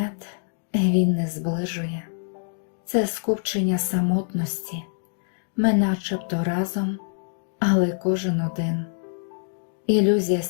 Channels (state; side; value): silent; right; digital silence